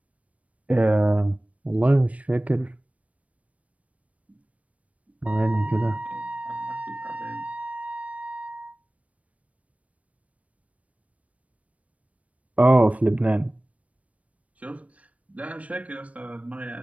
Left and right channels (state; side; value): late; left; 0.066 ms